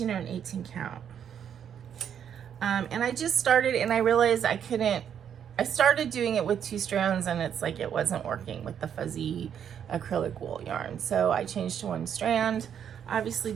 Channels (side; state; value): left; quieter; 8.6 dB